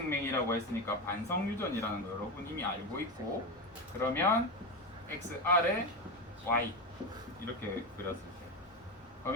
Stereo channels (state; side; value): normal; both; correlation 0.17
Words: 했으니까 반성유전이라는 거 여러분 이미 알고 있고, 그러면 XR에 Y 이렇게 그렸을 때,